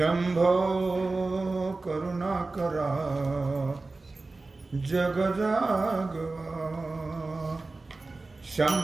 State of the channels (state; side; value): quieter; left; 3.4 dB